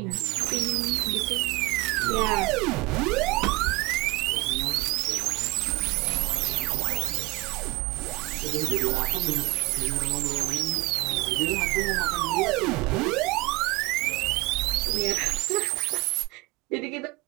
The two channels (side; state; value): left; quieter; 22.4 dB